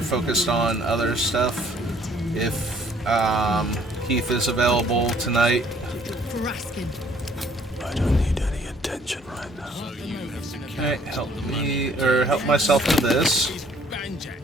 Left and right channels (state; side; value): normal; both; correlation 0.60